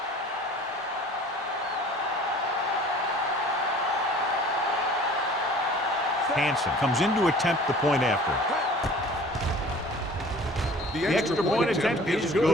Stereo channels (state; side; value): normal; both; correlation 0.47